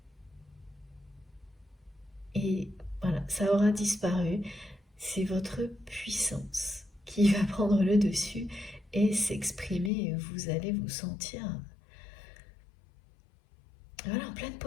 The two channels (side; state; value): right; drops out; at 9.9 s